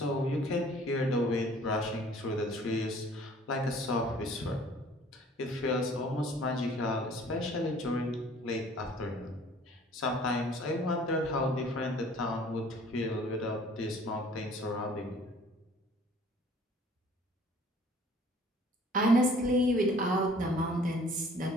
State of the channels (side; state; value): both; normal; correlation 0.53